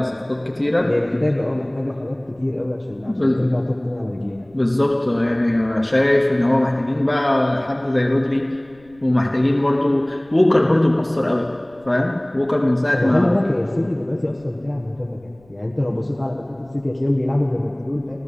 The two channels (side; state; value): left; noise; rumble, 29 dB below the sound